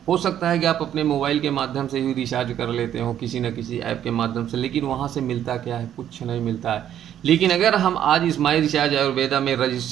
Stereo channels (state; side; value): quieter; left; 10.5 dB